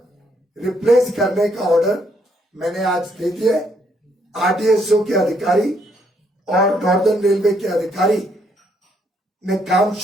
रिप्लेस करने का ऑर्डर मैंने आज दे दिया है। आरडीएसओ के अधिकारी और नॉर्दर्न रेलवे के अधिकारी ने काम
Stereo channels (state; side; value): normal; both; correlation 0.71